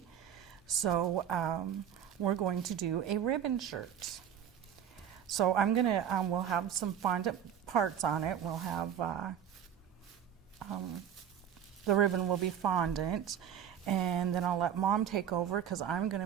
So we're going to do a ribbon shirt. So I'm gonna, we'll have some fondant parts on it. We'll have, the ribbon will be fondant. And then I'll let Mom take over because I'm going to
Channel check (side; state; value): left; quieter; 9.1 dB